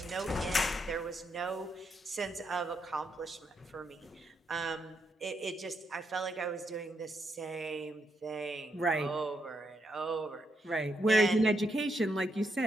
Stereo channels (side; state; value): both; normal; correlation 0.79